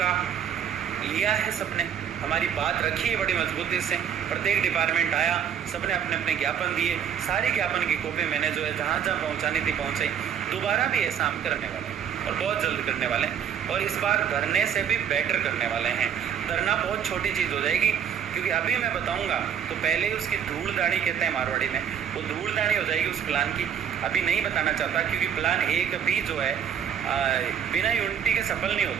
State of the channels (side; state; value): left; quieter; 8.5 dB